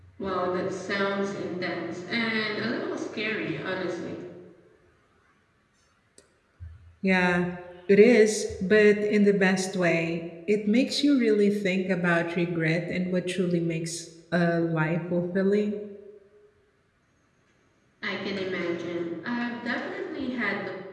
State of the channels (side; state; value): both; identical; correlation 1.00